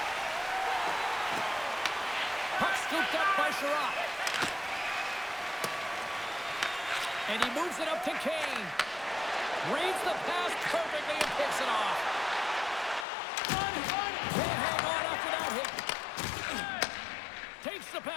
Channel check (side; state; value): right; drops out; at 13.1 s